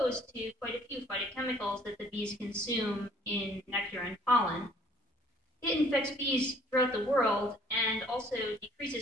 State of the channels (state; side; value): normal; both; correlation 0.57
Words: to quite a few phytochemicals that the bees consume in nectar and pollen. It infects bees throughout the world and also